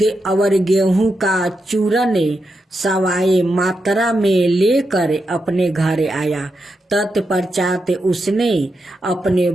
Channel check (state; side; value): normal; both; correlation 0.86